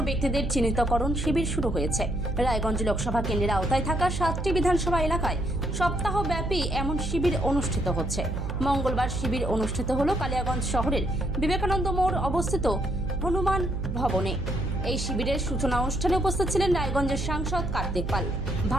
ব্যক্তিদের চিহ্নিতকরণ শিবির শুরু হয়েছে। রায়গঞ্জ লোকসভা কেন্দ্রের আওতায় থাকা 7টি বিধানসভা এলাকায় সপ্তাহব্যাপী এমন শিবির অনুষ্ঠিত হচ্ছে। মঙ্গলবার শিবির অনুষ্ঠিত হলো কালিয়াগঞ্জ শহরের বিবেকানন্দ মোড় অবস্থিত হনুমান ভবনে। এই শিবিরের সূচনা অনুষ্ঠানে উপস্থিত ছিলেন রায়গঞ্জের সাংসদ কার্তিক পাল।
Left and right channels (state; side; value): noise; right; hum, 3 dB below the sound